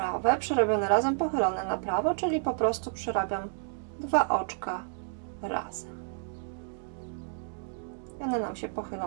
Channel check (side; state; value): left; silent; digital silence